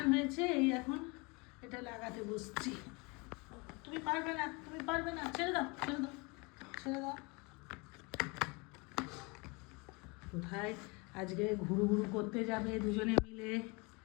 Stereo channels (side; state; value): right; quieter; 28.5 dB